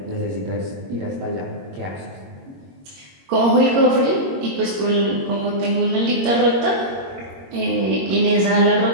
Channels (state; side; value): late; left; 21 ms